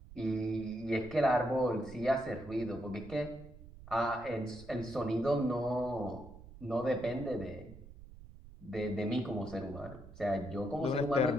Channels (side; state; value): right; noise; rumble, 17 dB below the sound